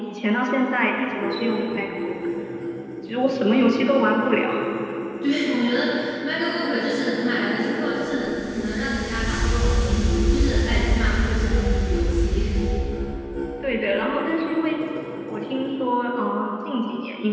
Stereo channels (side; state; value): both; identical; correlation 1.00